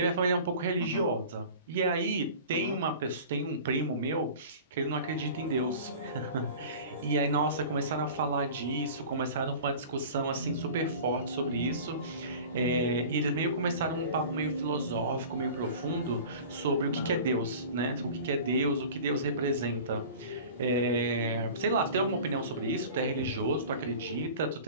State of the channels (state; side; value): inverted; both; correlation -0.40